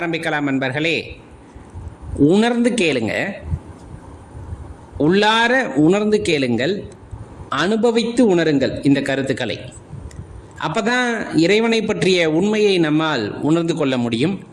நண்பர்களே, உணர்ந்து கேளுங்க, உள்ளார உணர்ந்து கேளுங்கள், அனுபவித்து உணருங்கள் இந்த கருத்துக்களை. அப்பதான் இறைவனை பற்றிய உண்மையை நம்மால் உணர்ந்து கொள்ள முடியும்.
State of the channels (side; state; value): both; identical; correlation 1.00